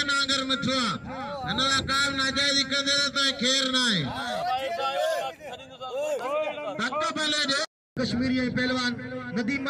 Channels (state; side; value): identical; both; correlation 1.00